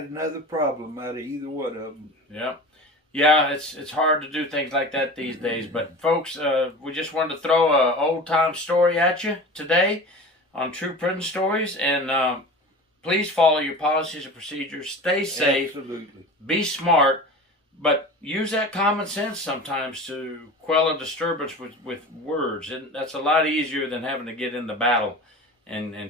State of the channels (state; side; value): normal; both; correlation 0.34